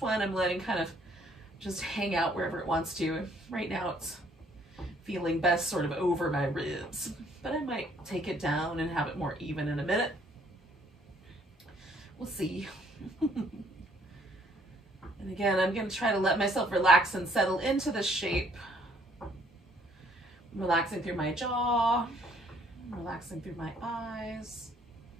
one I'm letting kind of just hang out wherever it wants to. Right now it's feeling best sort of over my ribs, but I might take it down and have it more even in a minute. We'll see. And again, I'm going to try to let myself relax and settle into the shape. I'm relaxing through my jaw, relaxing through my eyes,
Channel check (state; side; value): normal; both; correlation 0.64